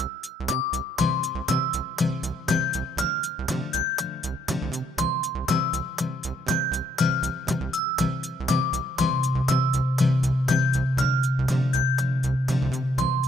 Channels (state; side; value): normal; both; correlation 0.72